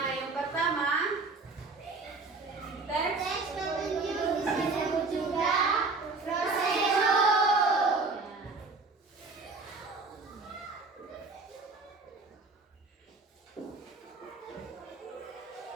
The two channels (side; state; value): left; quieter; 3.8 dB